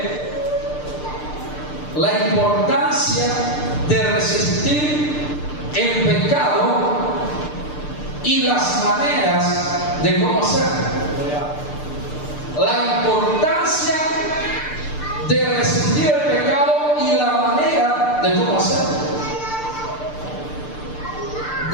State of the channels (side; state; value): right; late; 6.7 ms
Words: la importancia de resistir el pecado y las maneras de cómo hacerlo. La importancia de resistir el pecado y la manera de cómo hacerlo.